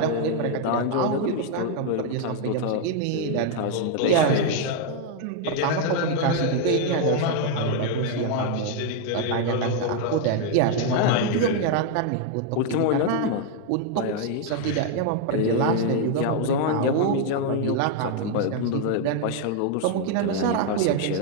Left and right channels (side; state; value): both; different; correlation 0.00